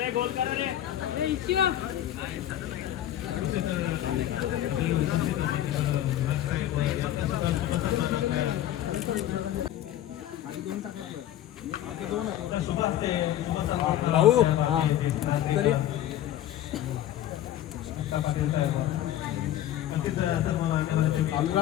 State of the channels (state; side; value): quieter; right; 12.3 dB